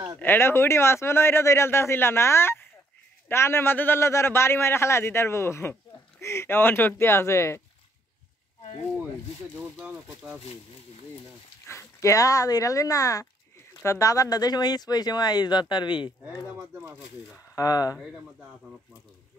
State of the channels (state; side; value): normal; both; correlation 0.68